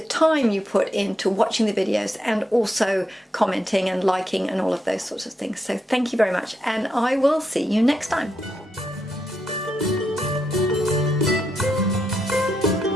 time you put into watching the videos and also commenting and liking and all of those sorts of things. So thank you very much, and I will see you next time.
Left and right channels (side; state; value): both; normal; correlation 0.83